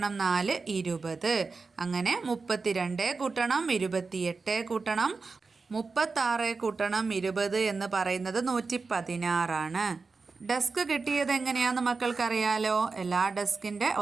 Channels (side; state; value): left; quieter; 4.3 dB